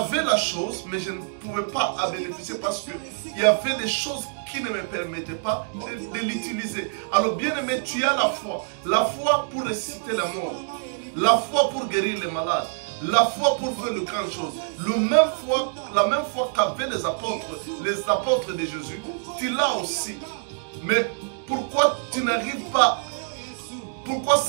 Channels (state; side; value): silent; left; digital silence